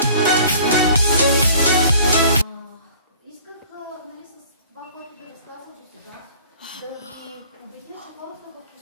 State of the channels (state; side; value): inverted; both; correlation -0.50